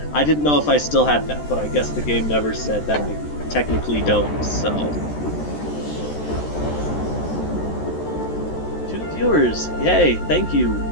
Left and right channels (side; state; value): right; late; 13 ms